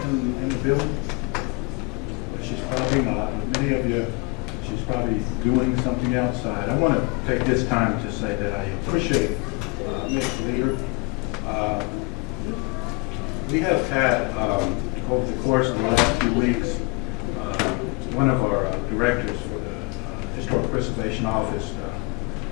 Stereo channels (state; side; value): quieter; right; 27.4 dB